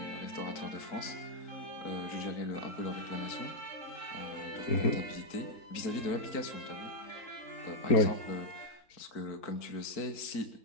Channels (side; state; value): right; late; 4.5 ms